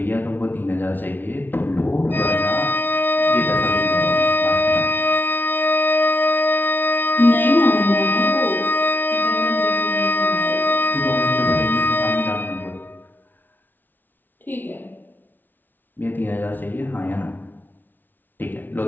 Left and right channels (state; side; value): late; right; 0.089 ms